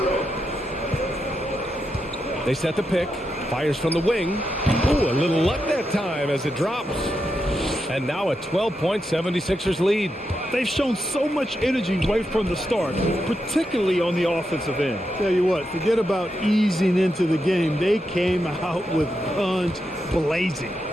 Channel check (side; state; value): both; normal; correlation 0.85